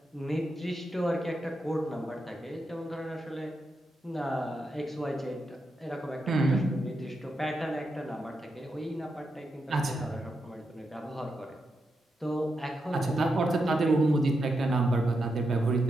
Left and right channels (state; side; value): normal; both; correlation 0.85